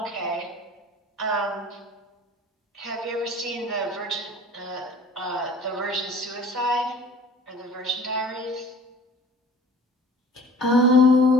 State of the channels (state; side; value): normal; both; correlation 0.46